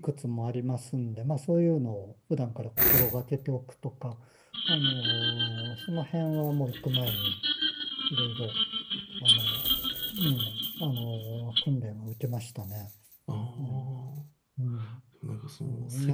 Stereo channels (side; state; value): both; identical; correlation 1.00